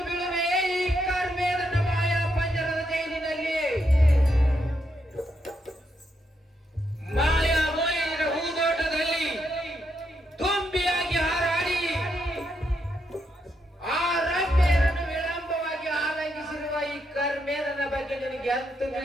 ಬೀಳುವೆ ಈ ಕಾರ್ಮೇದನ ಮಾಯಾ ಪಂಜರದ ಜೈಲಿನಲ್ಲಿ. ಮಾಯಾ ಮೋಹಿನಿಯ ಹೂದೋಟದಲ್ಲಿ ತುಂಬಿಯಾಗಿ ಹಾರಾಡಿ ಆ ರಮ್ಯರನ್ನು ವಿಳಂಬವಾಗಿ ಆಲಂಗಿಸಿರುವ ಈ ಕಾರ್ಮೇದನ ಬಗ್ಗೆ ನಿನಗೆ ಅಂತೂ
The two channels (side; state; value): both; normal; correlation 0.80